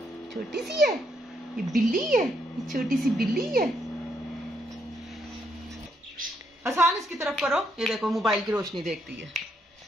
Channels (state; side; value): normal; both; correlation 0.75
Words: छोटी सी है। ये बिल्ली है, ये छोटी सी बिल्ली है। आसान इसकी तरफ करो। ये देखो मोबाइल की रोशनी देखती है।